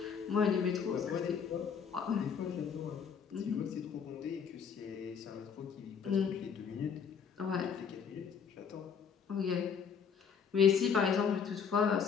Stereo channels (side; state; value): right; quieter; 6.8 dB